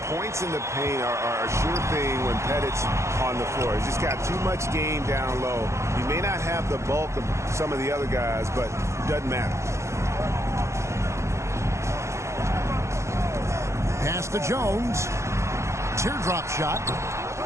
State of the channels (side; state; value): left; late; 0.14 ms